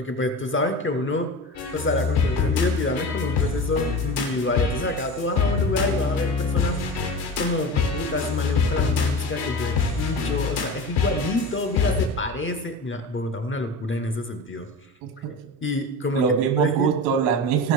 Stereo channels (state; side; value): normal; both; correlation 0.29